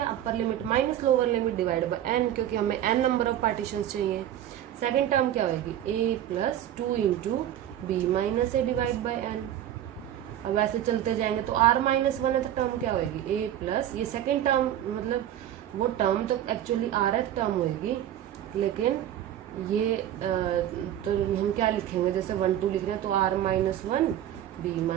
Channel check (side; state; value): left; quieter; 11.5 dB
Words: upper limit minus lower limit divide by N, क्योंकि हमें एन नंबर ऑफ पार्टीशन चाहिए। सेकेंड टर्म क्या होगी A plus 2 into B minus A divide by N. अब ऐसे चलते जाएंगे तो r माइनस 1 है, तो टर्म क्या होगी a प्लस, ये सेकेंड टर्म मतलब वो टर्म तो एक्चुअली rth टर्म होगी, लेकिन ये तो हम क्या लिखेंगे, जैसे 1 2 लिख रहे हैं तो r minus 1 b